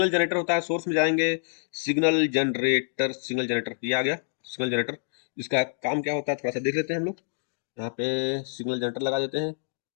जनरेटर होता है, सोर्स में जाएंगे, सिग्नल जनरेटर, सिग्नल जनरेटर ये आ गया, सिग्नल जनरेटर। इसका काम क्या होता है थोड़ा सा देख लेते हैं हम लोग। यहाँ पे सिग्नल जनरेटर लगा देते हैं,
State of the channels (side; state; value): right; silent; digital silence